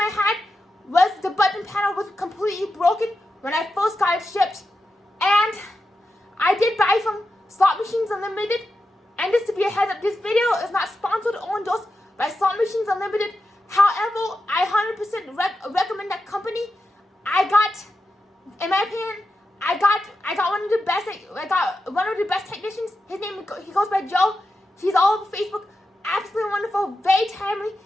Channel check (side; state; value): both; normal; correlation 0.89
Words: had was the button panel was completely broken when I first got it shipped. And I did buy from Slot Machines Unlimited. And just to be a heads up, this video is not sponsored or endorsed by Slot Machines Unlimited. However, I 100% recommend that company. In my opinion, I got one of the best technicians. He goes by Joe. He's all over Facebook. Absolutely wonderful, very timely.